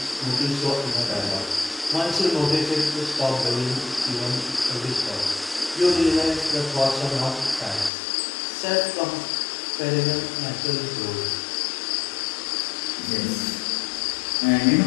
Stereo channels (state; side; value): drops out; right; at 7.9 s